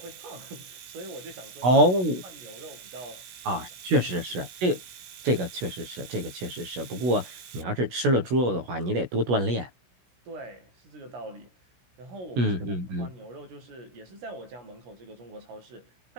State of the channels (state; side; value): late; left; 17 ms